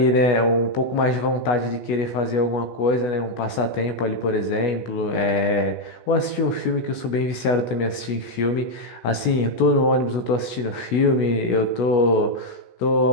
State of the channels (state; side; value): late; right; 16 ms